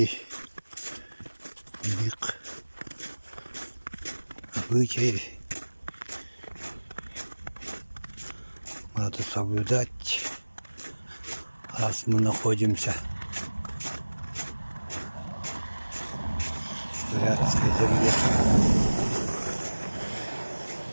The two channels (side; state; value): both; inverted; correlation -1.00